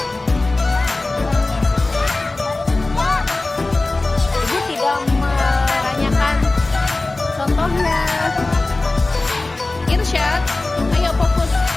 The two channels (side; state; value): right; quieter; 3.1 dB